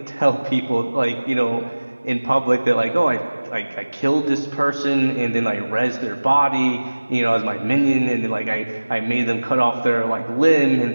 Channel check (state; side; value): inverted; both; correlation -1.00